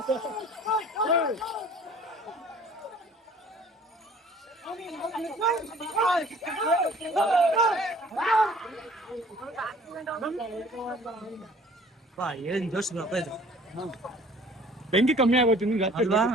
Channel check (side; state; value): both; normal; correlation 0.52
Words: ಏನ್ ಜೋಶ್ ಇದು. ಬೆಂಕಿ ಕಮ್ಮಿ ಆಗೋಯ್ತು ನಿಮ್ಗೆ ಅಲ್ವಾ?